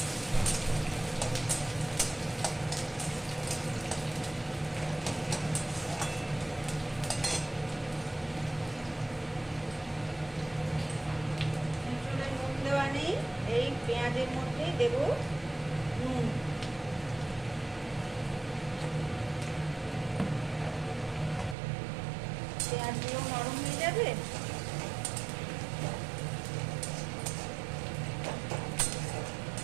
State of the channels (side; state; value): left; drops out; at 21.6 s